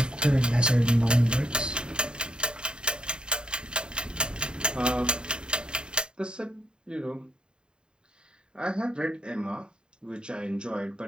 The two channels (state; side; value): late; left; 0.049 ms